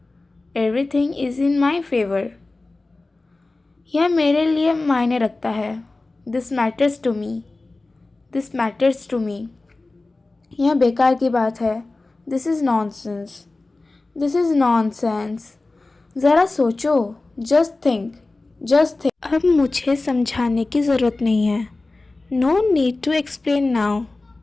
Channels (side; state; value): right; quieter; 3.2 dB